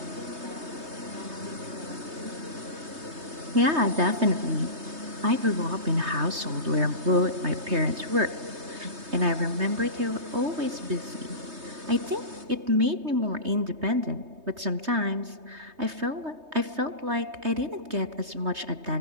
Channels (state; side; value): late; left; 3.2 ms